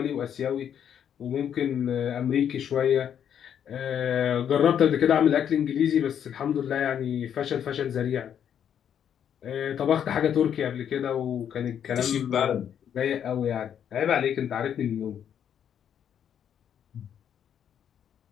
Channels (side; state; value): right; quieter; 9.0 dB